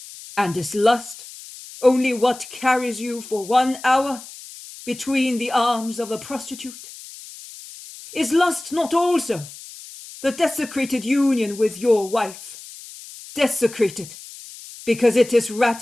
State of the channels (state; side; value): noise; left; hiss, 16 dB below the sound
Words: And is lust only what carries you for 1 hour between the arms of a prostitute? Is lust not also the desecrated union with your wife, desecrated because it is